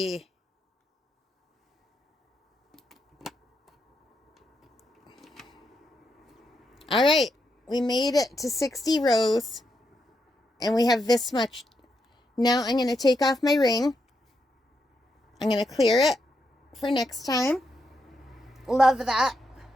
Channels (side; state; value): both; normal; correlation 0.82